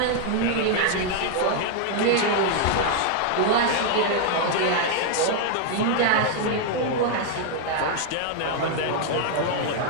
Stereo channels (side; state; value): both; different; correlation 0.00